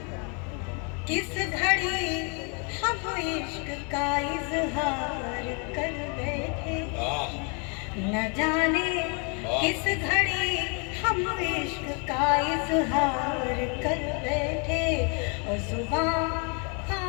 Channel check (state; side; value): quieter; right; 36.2 dB